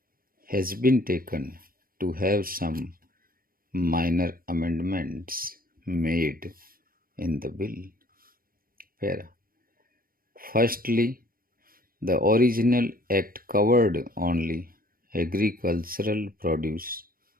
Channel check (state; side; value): late; left; 0.42 ms